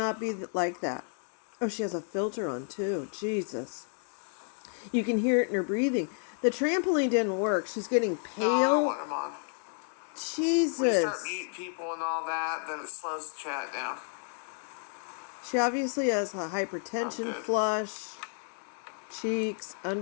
be like that. Oh, she has a filter on too. Jesus. You can hear it in her breathing. The trampoline didn't work. She's getting pale. No, I don't want him on. Jesus. When you start meeting people and all that, then it slows the chat down. She obviously has a hypertension flush. Cheeks,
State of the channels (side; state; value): right; silent; 57 dB below the other